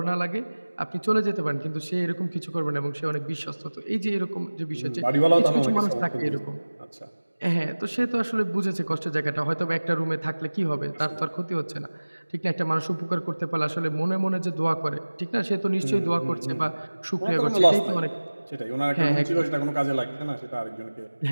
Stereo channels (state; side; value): inverted; both; correlation -1.00